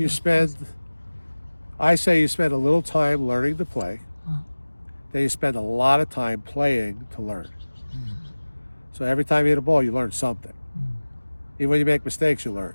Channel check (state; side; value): inverted; both; correlation -1.00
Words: spend, I say you spend a little time learning to play. Then you spend a lot of time playing to learn. So every time you hit a ball, you learn something. Even when you make mistakes, you learn.